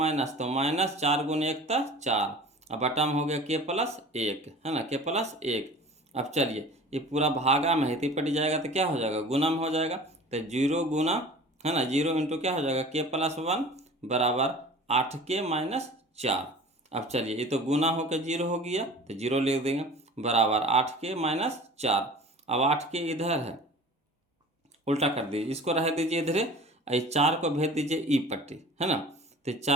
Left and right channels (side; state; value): both; normal; correlation 0.42